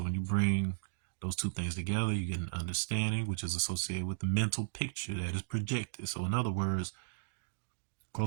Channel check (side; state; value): left; silent; digital silence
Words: when you bring those 2 things together, you get an understanding, which is associated with the mental picture that is projected. So in other words,